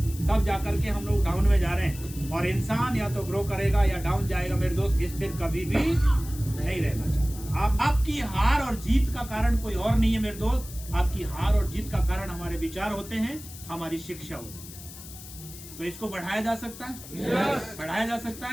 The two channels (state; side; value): noise; left; hiss, 15 dB below the sound